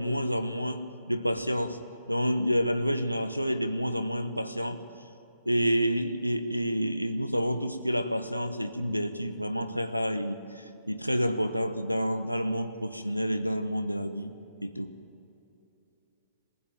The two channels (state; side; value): inverted; both; correlation -0.91